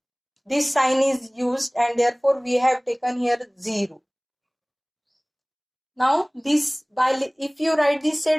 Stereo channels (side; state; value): both; identical; correlation 1.00